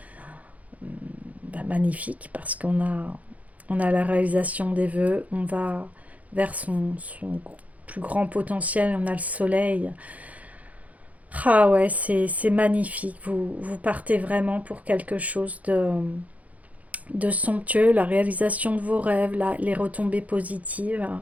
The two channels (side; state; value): left; late; 0.071 ms